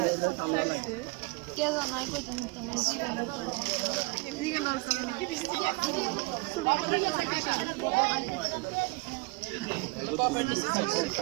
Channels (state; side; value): quieter; left; 27.0 dB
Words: কে জানাই কইতে নিতাম না জীবনে তো এদিকে নলসাম